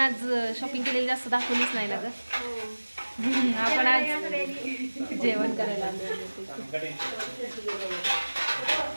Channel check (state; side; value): inverted; both; correlation -1.00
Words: शॉपिंग केलेली जास्त दाखवलीच नाही ना ग. आपण आज जेवण करायला